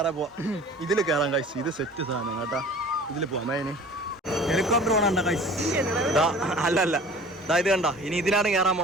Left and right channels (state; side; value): normal; both; correlation 0.45